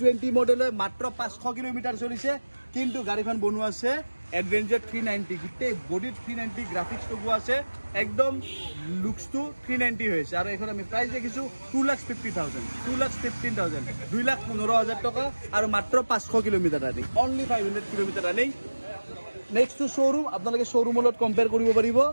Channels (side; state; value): both; inverted; correlation -1.00